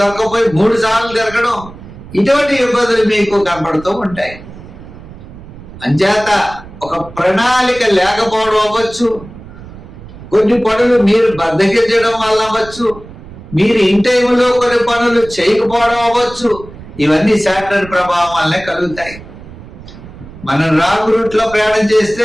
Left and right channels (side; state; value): right; noise; rumble, 17 dB below the sound